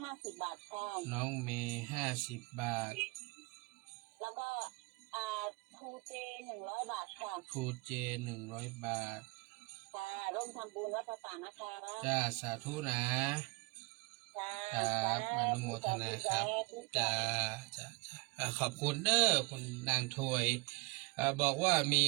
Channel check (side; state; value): left; quieter; 26.4 dB